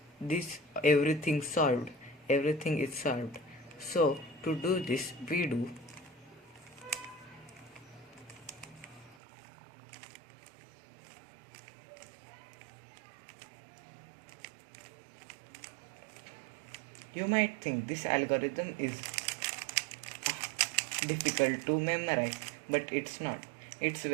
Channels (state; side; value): drops out; left; at 9.2 s